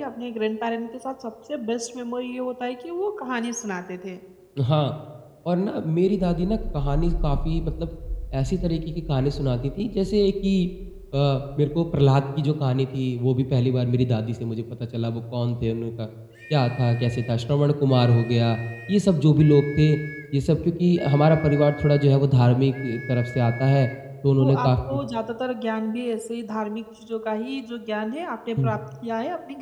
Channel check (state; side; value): identical; both; correlation 1.00